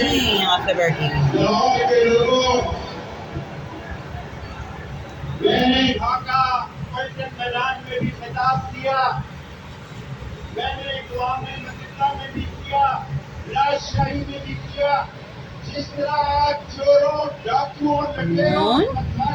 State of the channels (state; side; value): identical; both; correlation 1.00